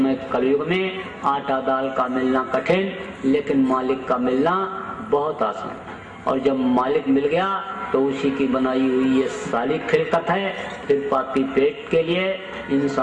कलयुग में आटा दाल का मिलना कठिन, लेकिन मालिक का मिलना बहुत आसान। और जब मालिक मिल गया तो उसी की बनाई हुई ये सारी खिलकत है। फिर पापी पेट के लिए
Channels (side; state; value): both; identical; correlation 1.00